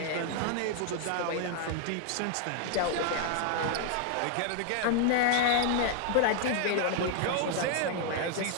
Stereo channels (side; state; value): both; different; correlation 0.00